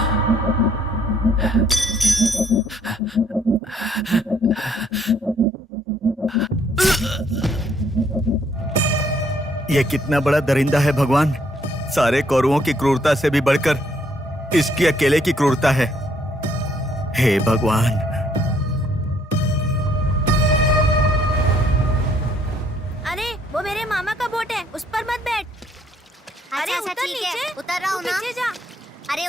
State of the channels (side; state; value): both; normal; correlation 0.67